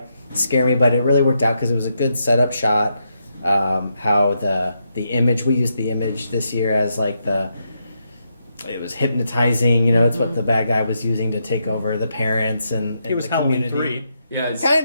scared me, but it really worked out because it was a good setup shot. How the image, we used the image this year as like it was hypnotizing, it's what the bad guy was using to take over the parents and it was the Halloween community. 3. Yeah, it's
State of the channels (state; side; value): inverted; both; correlation -0.81